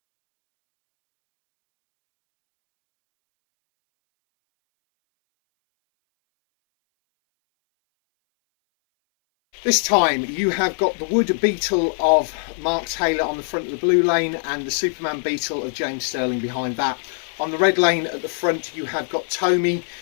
This time you have got the wood Beetle of Mark Taylor on the front of the blue lane and the Superman Beetle of James Stirling behind that. On the red lane at the front you have got Tomi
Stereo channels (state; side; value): silent; right; 60 dB below the other